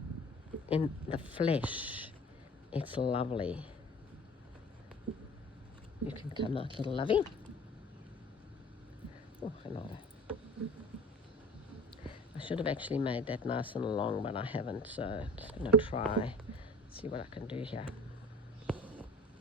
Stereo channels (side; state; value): both; normal; correlation 0.44